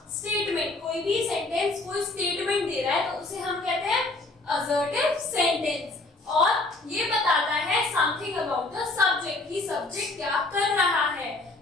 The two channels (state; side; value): quieter; right; 3.1 dB